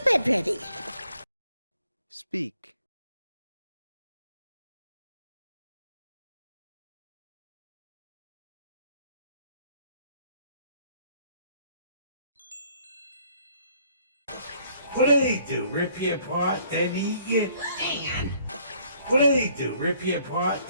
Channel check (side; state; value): both; inverted; correlation -0.63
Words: ready. Speak. What do they do? Rip you apart, then eat you? Dan! What do they do? Rip you apart,